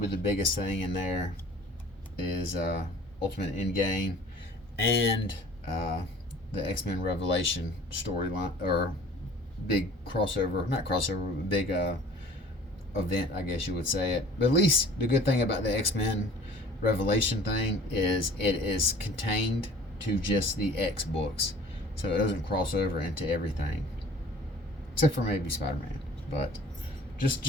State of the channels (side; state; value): both; normal; correlation 0.48